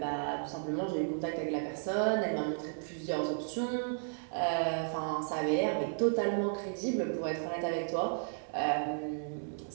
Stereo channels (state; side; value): silent; left; digital silence